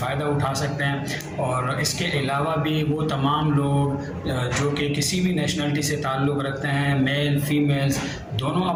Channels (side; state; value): both; identical; correlation 1.00